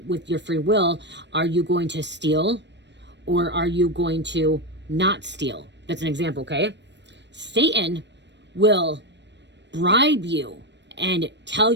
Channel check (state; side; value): late; left; 0.51 ms